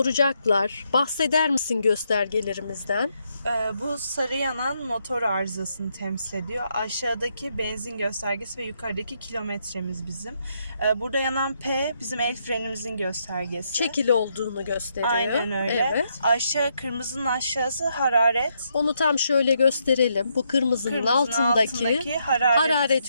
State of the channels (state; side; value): inverted; both; correlation -0.77